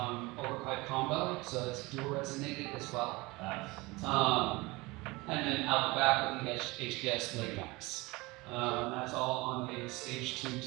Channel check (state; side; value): quieter; left; 23.0 dB